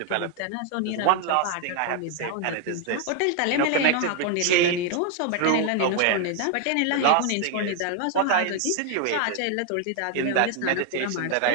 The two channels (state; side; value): different; both; correlation 0.00